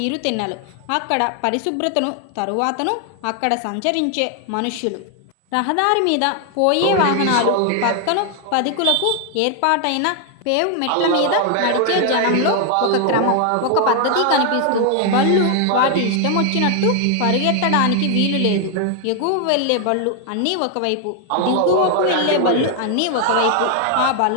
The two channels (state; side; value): different; both; correlation 0.00